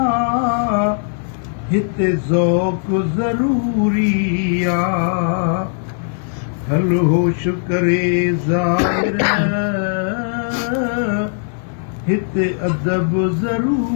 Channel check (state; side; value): silent; right; 59 dB below the other